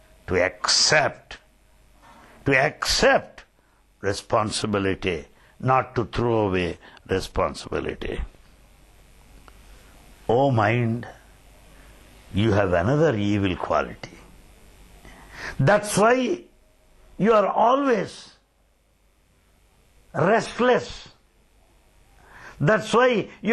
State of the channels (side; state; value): both; identical; correlation 1.00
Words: to accept responsibility, not to throw away responsibility. Oh mind, you have another evil quality. That's why you are always restless. That's why